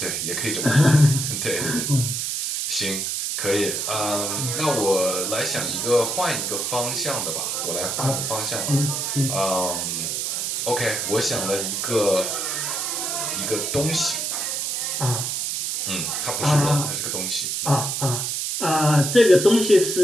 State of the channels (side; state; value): right; noise; hiss, 1 dB below the sound